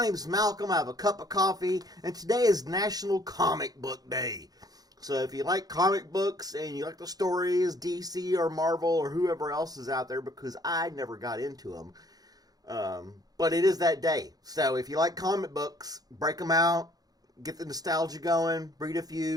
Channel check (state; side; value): late; left; 0.19 ms